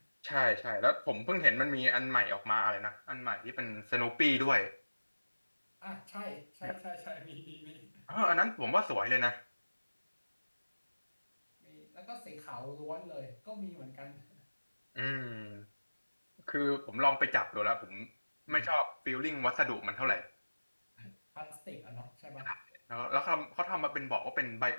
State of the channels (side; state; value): both; inverted; correlation -1.00